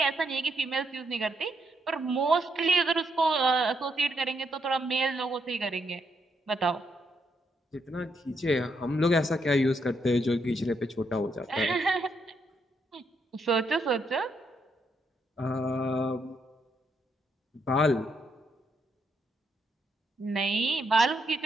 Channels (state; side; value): normal; both; correlation 0.77